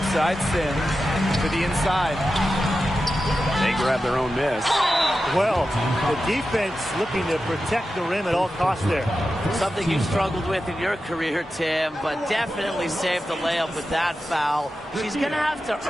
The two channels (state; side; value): normal; both; correlation 0.91